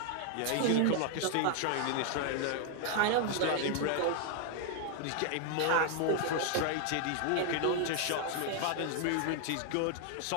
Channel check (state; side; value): different; both; correlation 0.00